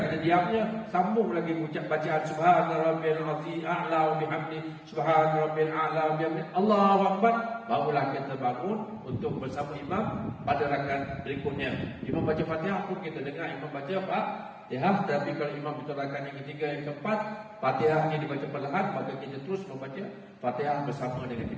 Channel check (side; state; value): both; identical; correlation 1.00